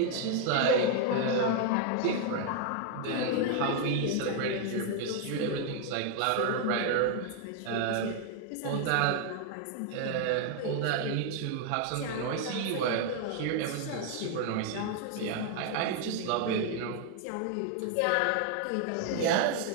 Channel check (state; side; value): different; both; correlation 0.00